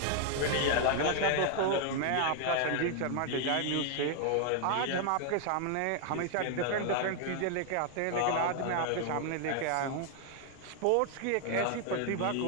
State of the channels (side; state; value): both; different; correlation 0.00